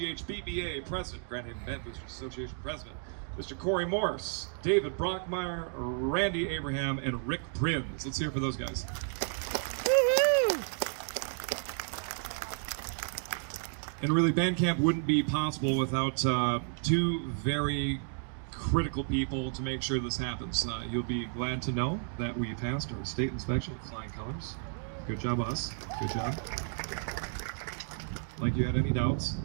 President, Grand Haven Band Boosters Association President, Mr. Corey Morse, David Brockmeyer, Randy Abraham, and Rick Prinz. Let's hear it for those guys. Woo-hoo! And really, band camp wouldn't be possible without 2 very critical people to make sure this happens. You'll be glad to know that we passed our state inspection with flying colors. Good job, us. Good job. Like you had any doubts.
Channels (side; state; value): left; silent; 56 dB below the other